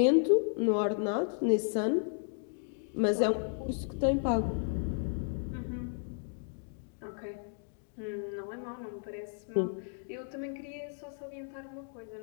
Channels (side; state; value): right; silent; 55 dB below the other